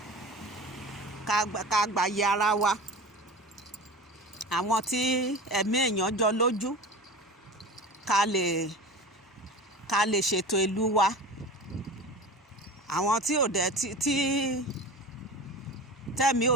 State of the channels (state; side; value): normal; both; correlation 0.33